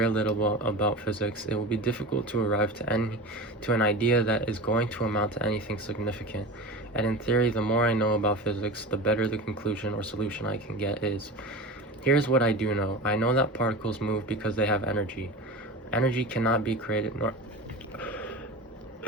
little about physics, it will be difficult to arrive to an idea that is going to amount to anything significant. And in theory, the more I know about physics, the better the conclusion or solution I can get is. Here's what I do know. I know that particles move because they have energy. Energy cannot be created nor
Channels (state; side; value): normal; both; correlation 0.30